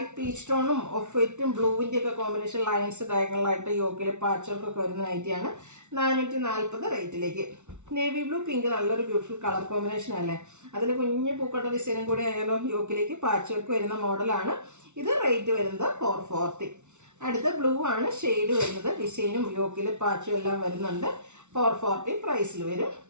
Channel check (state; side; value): late; left; 0.83 ms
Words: പീച്ച് ടോണും ഓഫ് വൈറ്റും ബ്ലൂവിൻ്റെ ഒക്കെ കോമ്പിനേഷൻ ലൈൻസ് ഡയഗണലായിട്ട് യോക്കിൽ പാച്ച് വർക്കൊക്കെ വരുന്ന നൈറ്റിയാണ്. 440 റേറ്റിലേക്ക്. നേവി ബ്ലൂ പിങ്ക് നല്ലൊരു ബ്യൂട്ടിഫുൾ കളർ കോമ്പിനേഷൻ അല്ലേ. അതിൽ കുഞ്ഞ് പൂക്കട്ട ഡിസൈനും കൂടി ആയാലും യോക്കിലേക്ക് പാച്ച് വർക്ക് വരുന്ന മോഡലാണ്. ഇത് റേറ്റ് വരുന്നത് 440. അടുത്ത ബ്ലൂ ആണ് ഷെയ്ഡ് വരുന്നത്. ഡിസൈനും യോക്കിൽ പാച്ചും എല്ലാം വരുന്നുണ്ട്. 440 പ്രൈസിൽ വരും.